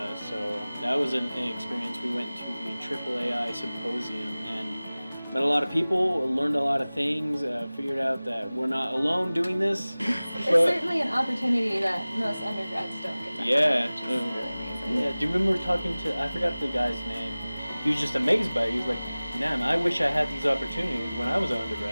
so that was an experience. We went to the AAAI symposium and met a lot of people, learned a lot of things, figured out that we're not alone doing this. It's certainly an opportunity that most undergrads don't get to have, which is really amazing. Yeah, do you remember talking to, I forgot the guy's name, he was just amazed by it. He was like, man, I wish I had these opportunities when I was an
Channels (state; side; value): inverted; both; correlation -0.99